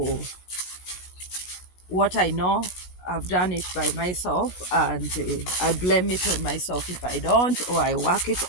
what I know. I've done it by myself, and I blame it on myself if I don't, or I work it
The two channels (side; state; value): right; late; 16 ms